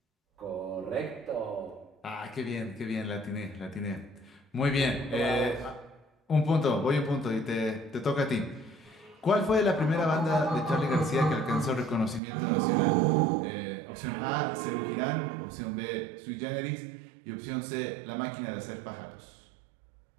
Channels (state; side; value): drops out; left; at 12.2 s